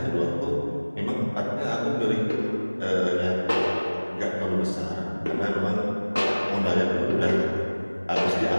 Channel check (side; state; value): both; inverted; correlation -1.00